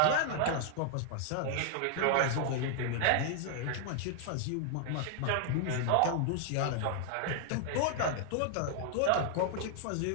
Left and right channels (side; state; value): both; different; correlation 0.00